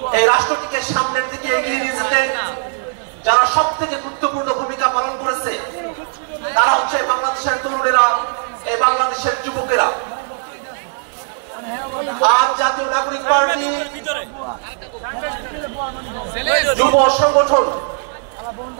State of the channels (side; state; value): left; silent; digital silence